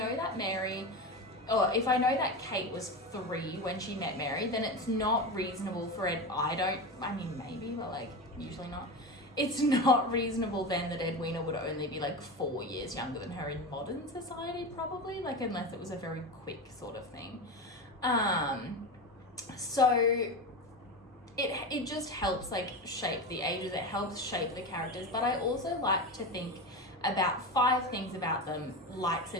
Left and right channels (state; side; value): normal; both; correlation 0.22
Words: that Mary, or if I know that Kate was 3 when she met Mary, then it's not reasonable for it. I mean, maybe, but like, usually not. It's not reasonable then that Edwina would only be like 4 years younger than her in modern society, probably, like, unless it was a very quick sort of thing. So it just helps like shape the ages, it helps shape the characters. But I also like to think about 5 things about them, likes